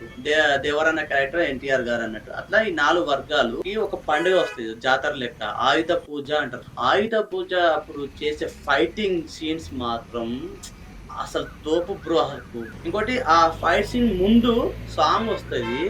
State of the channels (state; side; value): identical; both; correlation 1.00